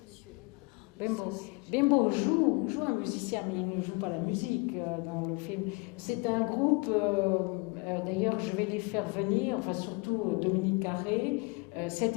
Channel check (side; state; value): right; quieter; 28.6 dB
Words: Bembo joue un musicien, mais il ne joue pas la musique dans le film. C'est un groupe, d'ailleurs je vais les faire venir, enfin surtout Dominique Carré, cet